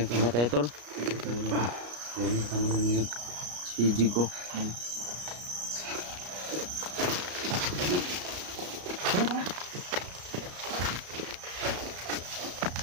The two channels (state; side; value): late; left; 34 ms